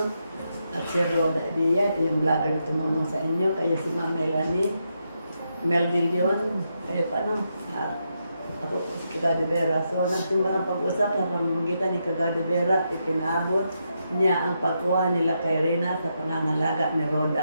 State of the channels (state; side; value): inverted; both; correlation -0.82